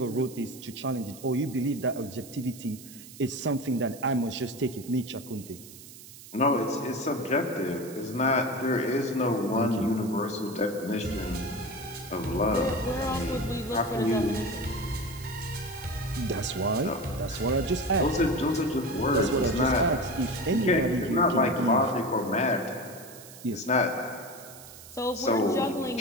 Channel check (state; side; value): noise; right; hiss, 17 dB below the sound